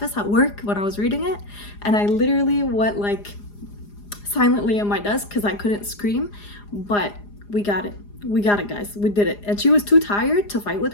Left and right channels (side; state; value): right; late; 4.9 ms